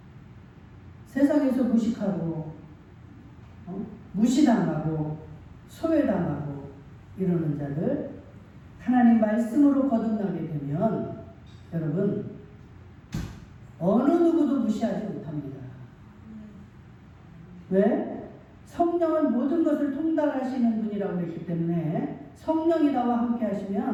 세상에서 무식하고 무시당하고 소외당하고 이러는 자들 하나님 말씀으로 거듭나게 되면 여러분 어느 누구도 무시하지 못합니다. 왜? 성령은 모든 것을 통달하시는 분이라고 했기 때문에 성령이 나와 함께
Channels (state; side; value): identical; both; correlation 1.00